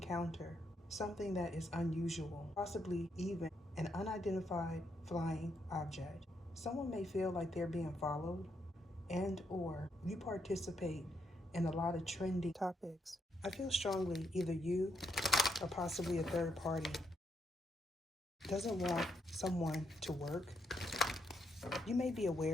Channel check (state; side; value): normal; both; correlation 0.77